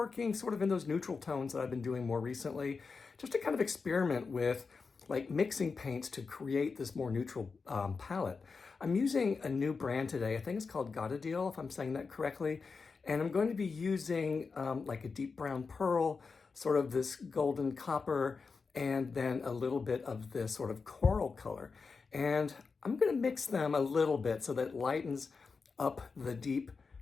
sort of in those neutral tones that I've been doing more recently, just to kind of experiment with like mixing paints to create this more neutral palette. I'm using a new brand today. I think it's called Gorideal, if I'm saying that correctly. And I'm going to be using like a deep brown pearl, sort of this golden copper, and then a little bit of this sort of coral color. And I'm going to mix them a little bit so that it lightens up the deep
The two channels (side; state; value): right; quieter; 4.8 dB